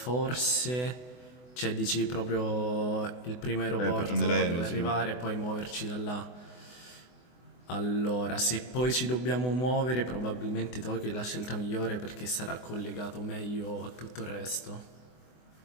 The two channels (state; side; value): late; right; 24 ms